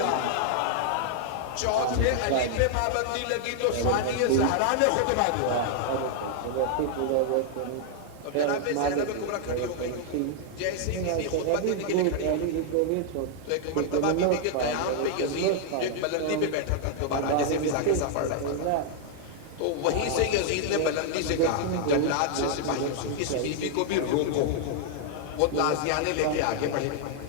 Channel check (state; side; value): different; both; correlation 0.00